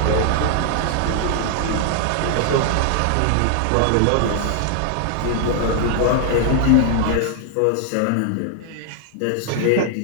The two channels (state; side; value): different; both; correlation 0.00